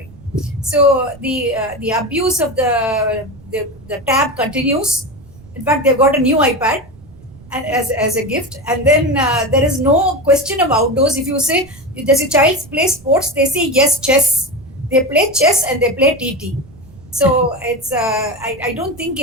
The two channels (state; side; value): noise; right; rumble, 22 dB below the sound